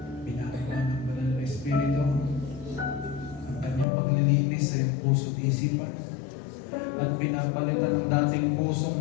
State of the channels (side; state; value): right; drops out; at 3.9 s